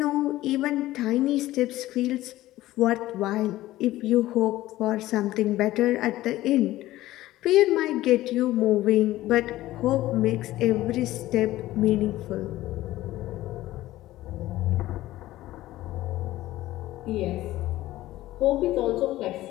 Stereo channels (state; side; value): quieter; right; 16.0 dB